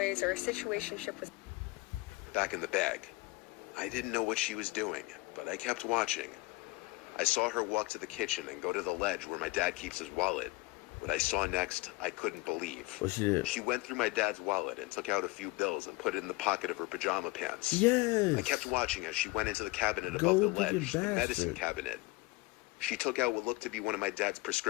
or a situationship with... Back in the bag. I didn't know what she was doing, but I kept watching. I saw her walk to the kitchen and go to the ledge where my dad keeps his wallet. What I saw next, I couldn't believe. What she did? She went through my dad's wallet and took out a few bills and put it in the pocket of her pajama pants. Yes. I kept watching as she went into the cabinet above the ledge, the medicine cabinet. She took out what looked to be one of my dad's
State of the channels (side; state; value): right; quieter; 22.7 dB